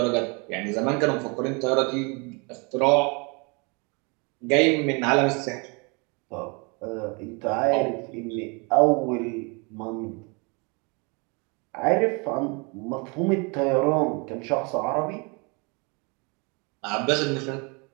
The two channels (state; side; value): quieter; left; 31.1 dB